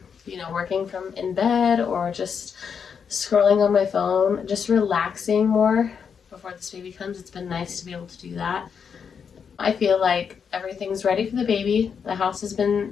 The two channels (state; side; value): quieter; right; 6.7 dB